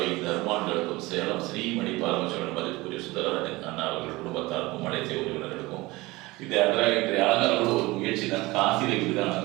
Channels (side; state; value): left; quieter; 21.2 dB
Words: தர்மான்களுக்கும் சேலம் ஸ்ரீமணி பார்வசனபதற்குரிய சுந்தராஜன் அண்ணா அவர்கள் குடும்பத்தாருக்கும் அனைத்து உறவினர்களுக்கும் இது இன்றைய அலங்காரம் ஒரு முயற்சி தான். காசியில் இப்படிதான்